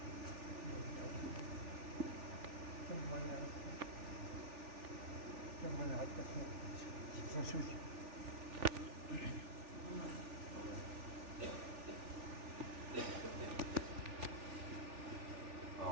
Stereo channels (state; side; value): late; left; 3.4 ms